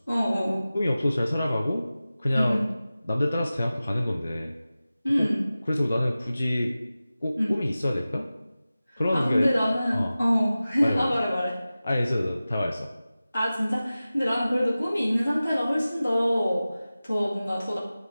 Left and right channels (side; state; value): both; inverted; correlation -0.96